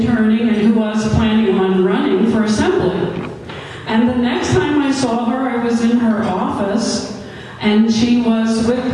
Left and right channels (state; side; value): identical; both; correlation 1.00